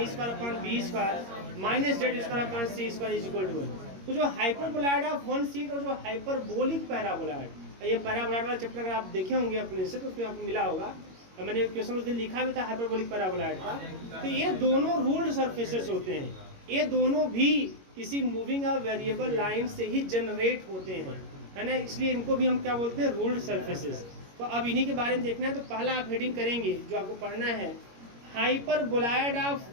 square upon b square minus z square upon c square is equal to 1। तो जो हाइपरबोलॉइड ऑफ वन सीट और जो हाइपरबोलिक पैराबोलॉइड, ये पैराबोलॉइड वाला चैप्टर अगर आप देखे होंगे अपने से तो उसमें आपको मिला होगा, मैंने क्वेश्चन उस दिन लिखा भी था हाइपरबोलिक पैराबोलॉइड का। तो ये दोनों रूल्ड सरफेसेस होते हैं, ये दोनों भी किसी मूविंग या वेरिएबल लाइन से ही जनरेट होते हैं, है ना, इसलिए इनको भी हम क्या बोलते हैं, रूल्ड सरफेसेस। तो अब इन्हीं के बारे में देखना है। तो पहला आप हेडिंग करेंगे जो आपको पढ़ना है, hyperboloid of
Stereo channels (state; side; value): late; left; 21 ms